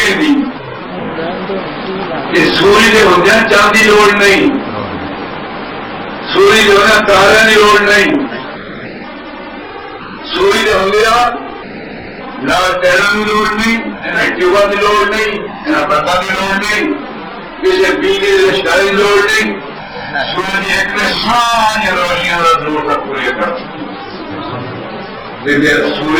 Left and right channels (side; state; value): both; identical; correlation 1.00